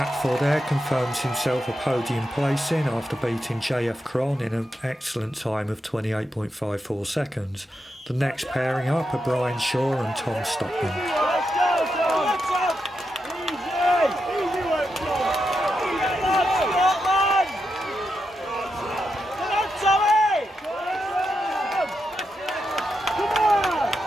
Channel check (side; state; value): both; normal; correlation 0.86